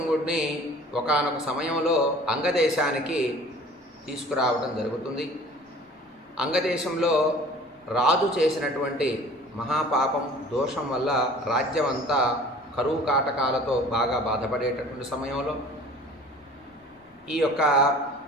ఒకానొక సమయంలో అంగదేశానికి తీసుకురావడం జరుగుతుంది. అంగదేశంలో రాజు చేసినటువంటి మహాపాపం దోషం వల్ల రాజ్యం అంతా కరువు కాటకాలతో బాగా బాధపడేటటువంటి సమయంలో ఈ యొక్క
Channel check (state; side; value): normal; both; correlation 0.47